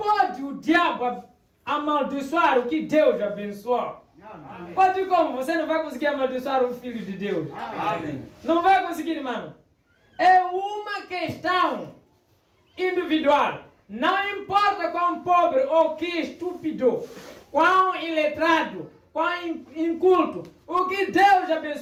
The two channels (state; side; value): identical; both; correlation 1.00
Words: o diabo amaldiçoar o que Deus abençoou. Pode como? Você não vai conseguir amaldiçoar o Filho de Deus. Amém. Não vai conseguir, irmão. É uma questão individual. Não importa quão pobre ou que estúpido, quão iletrado, quão inculto. O que Deus